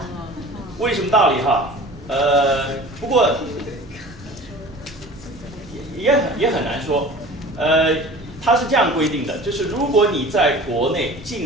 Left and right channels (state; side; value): noise; right; rumble, 20 dB below the sound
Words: 为什么道理哈？不过也很难说。它是这样规定的，就是如果你在国内